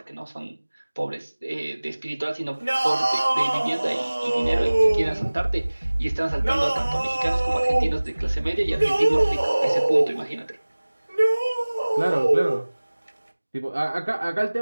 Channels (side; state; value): both; inverted; correlation -1.00